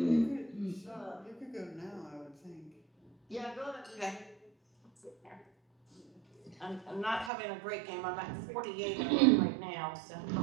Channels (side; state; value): left; drops out; at 7.3 s